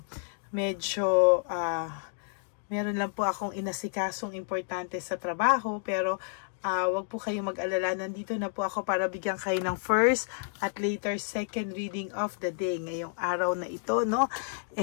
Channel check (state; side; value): silent; right; digital silence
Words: medyo meron lang po akong inasikasong importante sa trabaho, pero wag po kayong mag-alala, nandito na po ako para bigyan kayo ng first at later second reading of the day ngayong araw na ito, no?